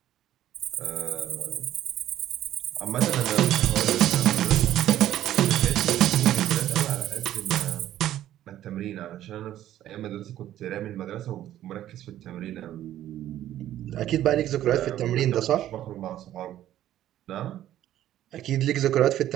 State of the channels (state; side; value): quieter; left; 12.5 dB